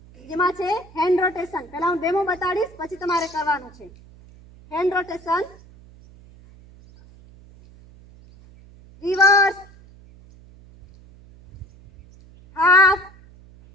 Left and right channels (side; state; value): right; noise; hum, 23 dB below the sound